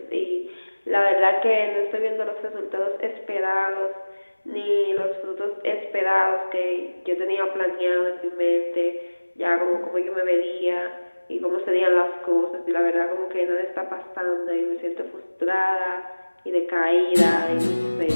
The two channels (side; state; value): both; inverted; correlation -1.00